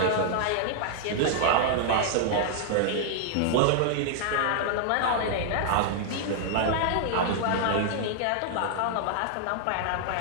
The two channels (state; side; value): different; both; correlation -0.01